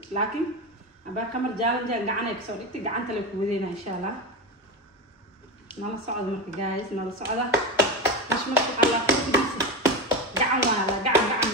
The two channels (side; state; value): both; normal; correlation 0.19